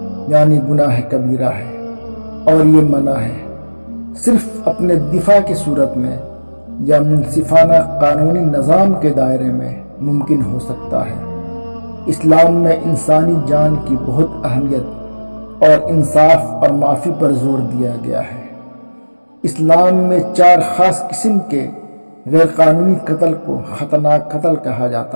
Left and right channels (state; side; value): inverted; both; correlation -1.00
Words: یعنی گناہ کبیرہ ہے، اور یہ منع ہے صرف اپنے دفاع کی صورت میں یا منصفانہ قانونی نظام کے دائرے میں ممکن ہو سکتا ہے۔ اسلام میں انسانی جان کی بہت اہمیت اور انصاف اور معافی پر زور دیا گیا ہے۔ اسلام میں 4 خاص قسم کے غیر قانونی قتل کو خطرناک قتل کہا